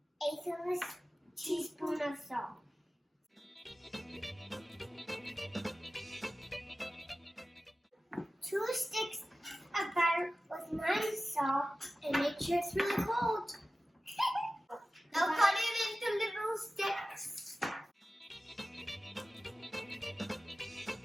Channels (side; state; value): both; normal; correlation 0.95